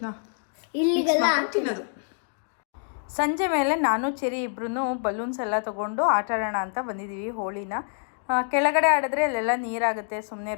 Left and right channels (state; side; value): silent; right; digital silence